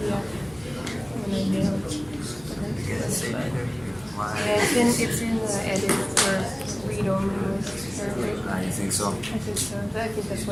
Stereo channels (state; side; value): noise; right; hum, 23 dB below the sound